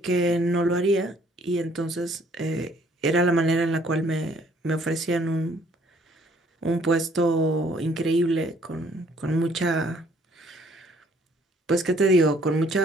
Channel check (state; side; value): normal; both; correlation 0.62